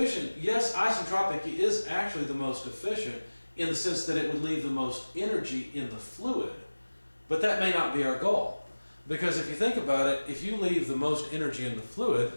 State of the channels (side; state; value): both; inverted; correlation -1.00